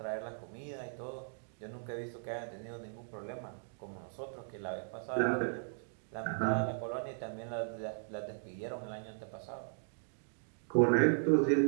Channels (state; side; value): silent; left; digital silence